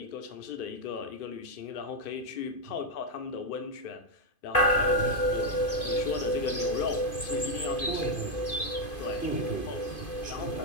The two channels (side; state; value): right; late; 2.5 ms